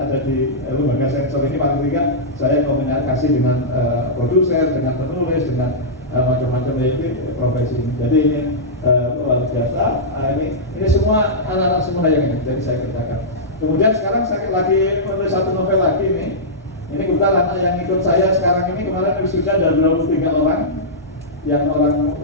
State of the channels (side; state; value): both; normal; correlation -0.13